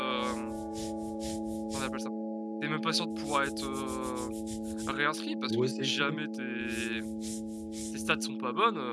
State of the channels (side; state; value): both; identical; correlation 1.00